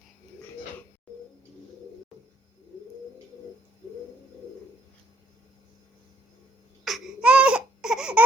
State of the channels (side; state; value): both; normal; correlation 0.67